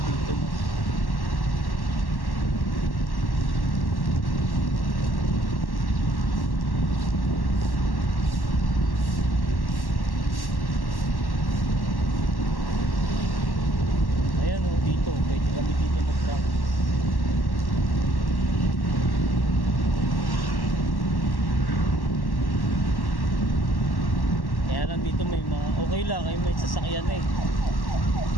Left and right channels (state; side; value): late; right; 1.1 ms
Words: dito. Pwede kami dito mag-practice. Kaya lang dito may mga okay lang, ay may sasakyan eh.